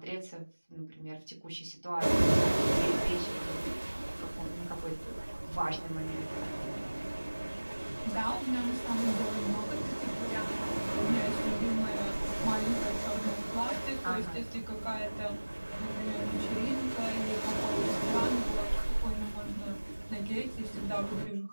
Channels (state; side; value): inverted; both; correlation -1.00